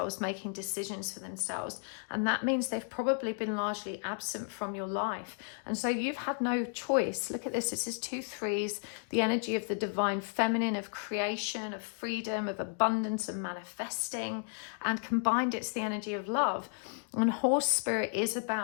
making decisions for themselves. And that means they've probably been largely absent from your life. And so you've had no choice. Look at this. This is 2 3s, the energy of the divine feminine, of creation, of freedom, of abundance, and manifesting. And combined, it's the energy of love. And horse spirit is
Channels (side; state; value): right; silent; 56 dB below the other